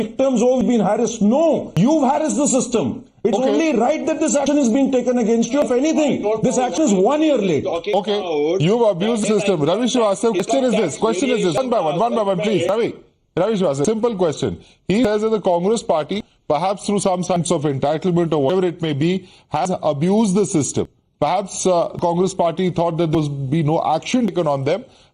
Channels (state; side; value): identical; both; correlation 1.00